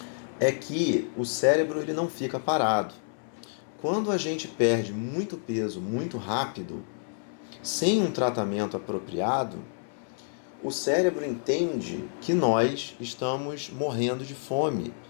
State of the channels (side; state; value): right; silent; 59 dB below the other